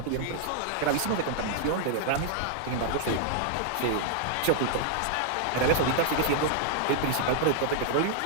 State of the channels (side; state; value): both; different; correlation 0.00